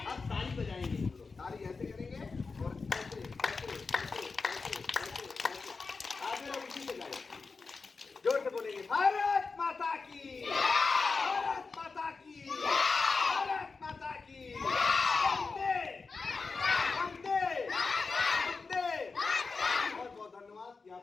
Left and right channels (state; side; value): quieter; right; 4.4 dB